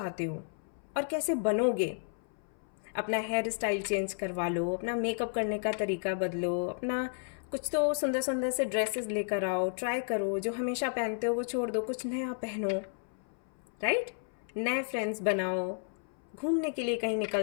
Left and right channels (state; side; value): silent; right; 56 dB below the other